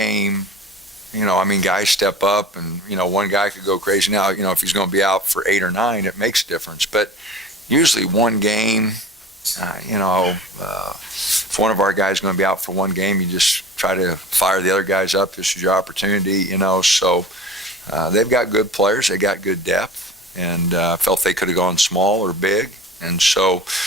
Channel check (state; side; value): normal; both; correlation 0.39